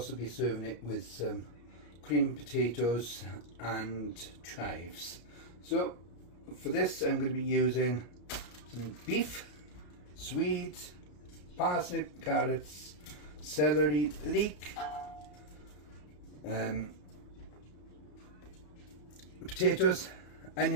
be serving it with some creamed potatoes and chives. So for this I'm going to be using some beef, swede, parsnip, carrots, celery, leek, potatoes,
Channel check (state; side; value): late; right; 34 ms